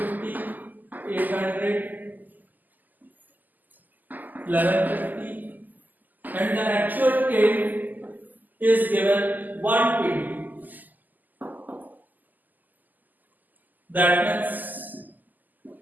800, 1150, and the actual yield is given 120. That means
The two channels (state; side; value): late; left; 0.084 ms